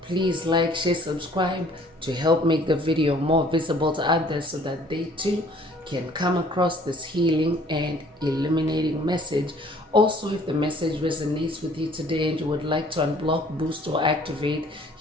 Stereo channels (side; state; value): both; normal; correlation 0.56